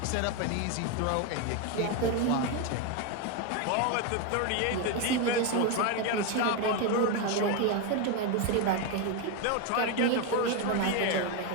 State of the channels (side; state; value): both; different; correlation 0.02